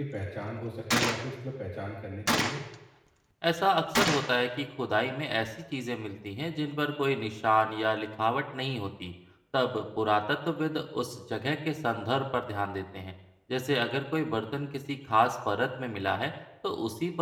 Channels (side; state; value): both; identical; correlation 1.00